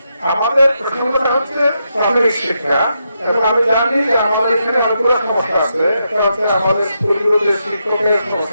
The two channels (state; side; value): inverted; both; correlation -0.83